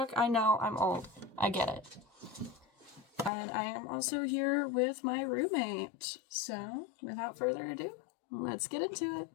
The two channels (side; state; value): right; drops out; at 3.3 s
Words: I know, I'm old. I get it. And I am also here with my roommate. So, without further ado, let's get into it.